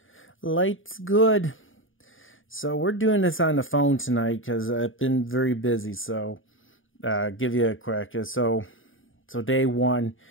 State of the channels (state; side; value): late; right; 0.58 ms